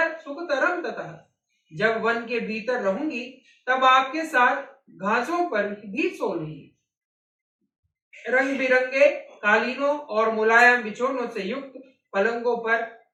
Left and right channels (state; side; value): identical; both; correlation 1.00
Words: सुखतरम ततः। जब वन के भीतर रहूंगी, तब आपके साथ घासों पर भी सो लूंगी। रंग बिरंगे कालीनों और मुलायम बिछोनों से युक्त पलंगों पर